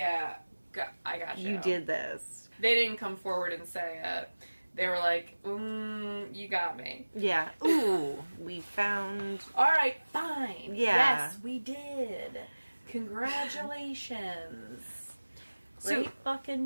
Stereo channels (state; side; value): inverted; both; correlation -1.00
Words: I got you. You did this. They didn't come forward and say it. They were like, you got me. Yeah. Ooh, we found... Alright, fine. Yeah. Yes, we did. Congratulations. Great